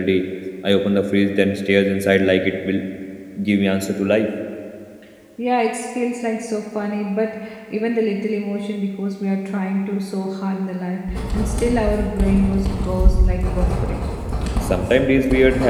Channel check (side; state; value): both; identical; correlation 1.00